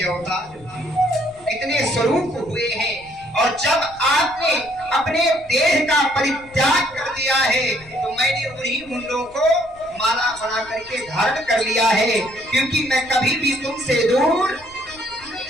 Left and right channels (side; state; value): left; noise; rumble, 24 dB below the sound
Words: अवतार, कितने स्वरूप हुए हैं। और जब आपने अपने देह का परित्याग कर दिया है तो मैंने उन्हीं मुंडों को माला बना करके धारण कर लिया है, क्योंकि मैं कभी भी तुमसे दूर